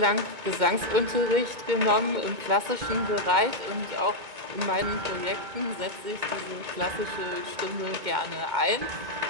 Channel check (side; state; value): left; late; 2.1 ms